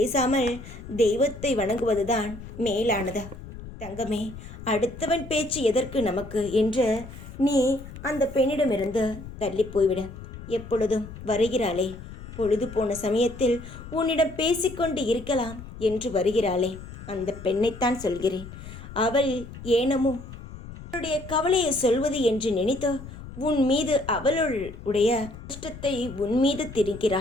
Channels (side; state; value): left; noise; rumble, 13 dB below the sound